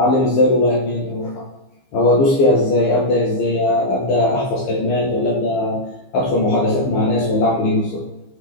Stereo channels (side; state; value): right; late; 15 ms